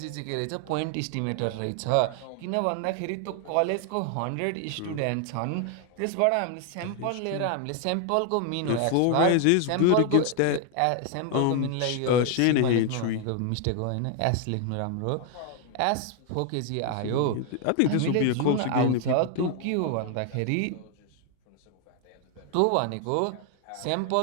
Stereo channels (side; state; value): both; different; correlation 0.00